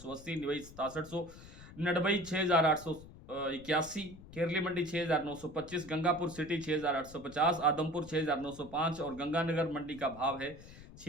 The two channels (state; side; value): noise; left; rumble, 17 dB below the sound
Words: निवई 6700, नडबई 6881, केरली मंडी 6925, गंगापुर सिटी 6850, आदमपुर 6905 और गंगानगर मंडी का भाव है